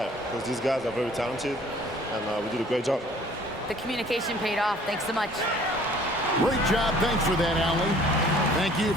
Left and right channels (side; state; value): both; normal; correlation 0.54